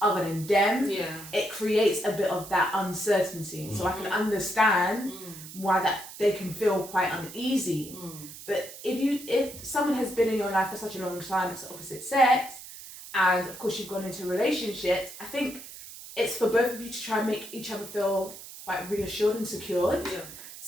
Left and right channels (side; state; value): right; noise; hiss, 14 dB below the sound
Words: other than them, it creates a bit of that uncertainty. So I can understand why that they can feel quite uneasy. But if someone has been in your life for such a long time, it's the opposite sex, and of course you've gone into relationships, I think it's for both of you to try and make each other feel quite reassured and secured. Yeah.